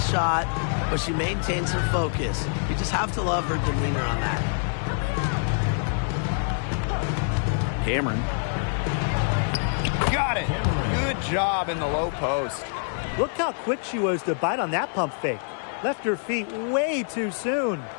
but she maintains her focus. You just have to love her demeanor on that. Cameron. Got it. Good job in the low post. Look how quick she was to bite on that pump fake. Left her feet way too soon.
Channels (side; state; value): right; silent; 59 dB below the other